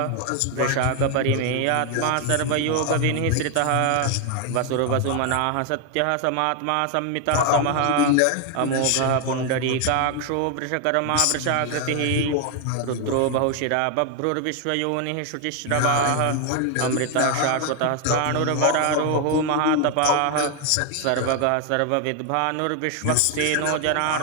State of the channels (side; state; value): both; different; correlation 0.01